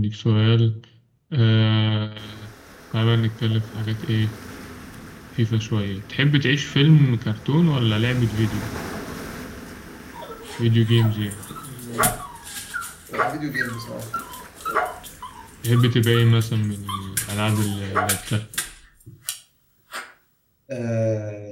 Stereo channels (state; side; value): identical; both; correlation 1.00